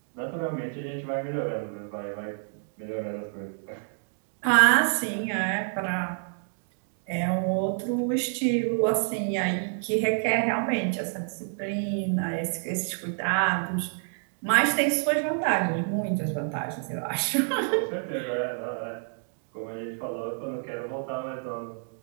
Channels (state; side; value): silent; left; 59 dB below the other